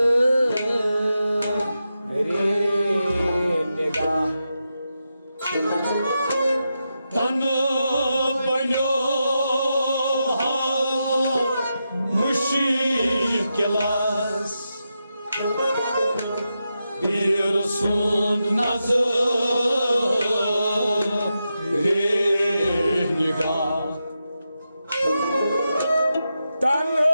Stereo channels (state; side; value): inverted; both; correlation -0.88